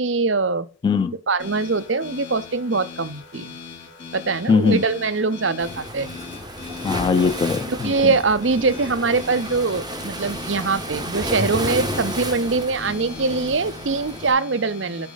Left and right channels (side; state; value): both; normal; correlation 0.01